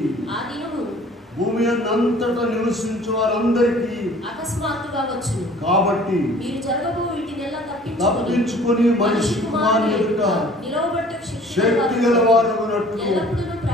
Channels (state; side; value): normal; both; correlation 0.51